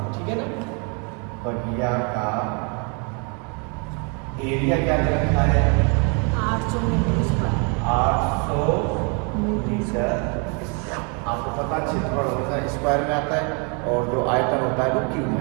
ठीक है ना? बगिया का एरिया क्या दे रखा है? 800 मीटर स्क्वायर। 800 मीटर। आपको पता है क्षेत्रफल हमेशा स्क्वायर में आता है, और जो आयतन होता है वो क्यूब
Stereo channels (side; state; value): left; quieter; 35.6 dB